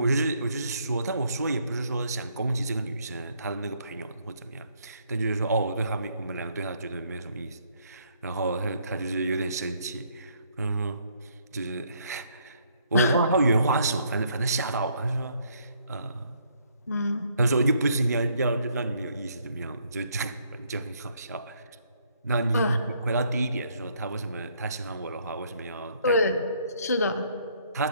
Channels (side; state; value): both; inverted; correlation -0.68